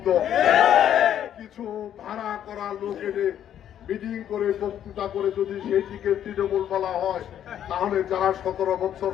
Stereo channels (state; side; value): quieter; right; 10.3 dB